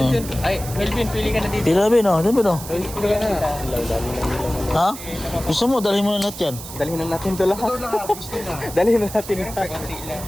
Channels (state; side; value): noise; right; hiss, 12 dB below the sound